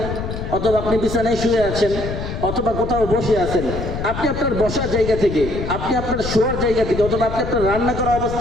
অথবা আপনি বিছানায় শুয়ে আছেন, অথবা কোথাও বসে আছেন, আপনি আপনার বসার জায়গা থেকে, আপনি আপনার শোয়ার জায়গা থেকে, অথবা আপনি আপনার রান্না করা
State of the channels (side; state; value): left; noise; rumble, 6 dB below the sound